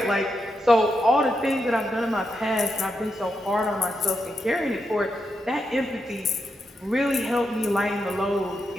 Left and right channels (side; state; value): both; normal; correlation 0.84